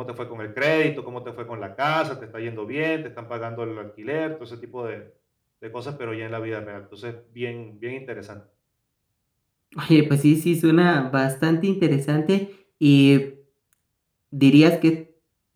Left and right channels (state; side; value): identical; both; correlation 1.00